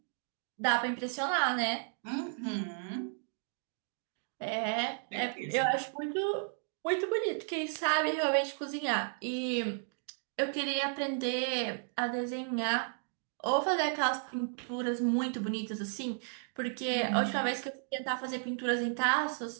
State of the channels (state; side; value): silent; left; digital silence